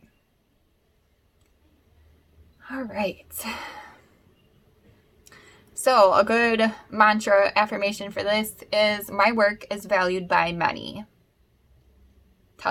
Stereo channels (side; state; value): both; identical; correlation 1.00